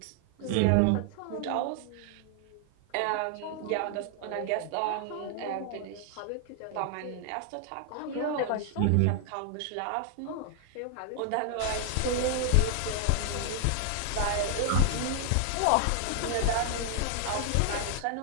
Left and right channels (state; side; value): different; both; correlation 0.00